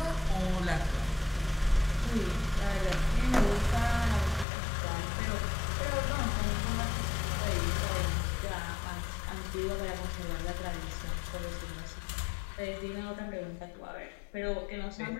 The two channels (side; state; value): right; drops out; at 4.5 s